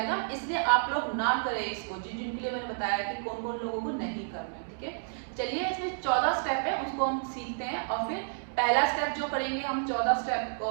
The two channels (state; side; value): silent; left; digital silence